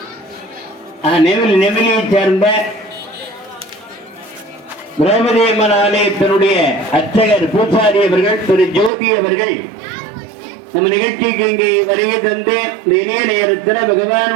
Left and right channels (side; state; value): left; drops out; at 8.9 s